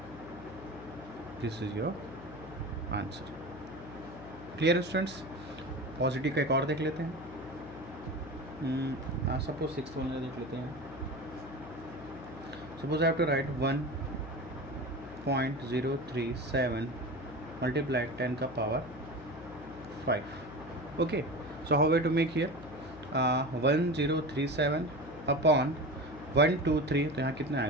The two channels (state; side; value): noise; left; hum, 15 dB below the sound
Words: This is your answer. Clear students. Positive का एक और देख लेते हैं. सपोज 6th वन देख लेते हैं. Suppose I have to write 1.037 multiply 10 का power 5. Okay, so how way to make here 1037 upon 123, तो यहाँ कितना